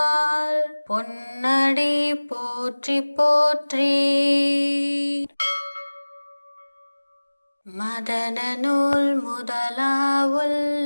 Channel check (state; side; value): inverted; both; correlation -1.00